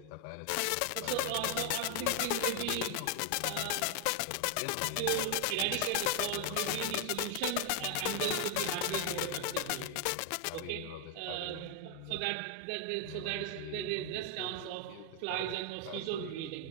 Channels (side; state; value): both; different; correlation 0.01